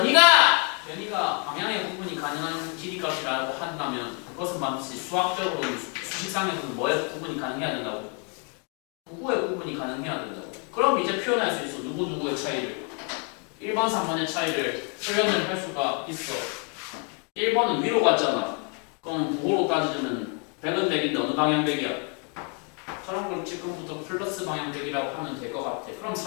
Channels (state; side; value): quieter; right; 33.9 dB